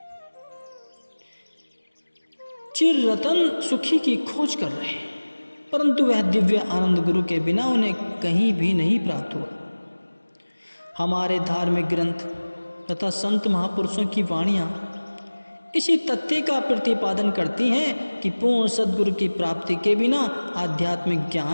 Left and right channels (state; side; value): inverted; both; correlation -1.00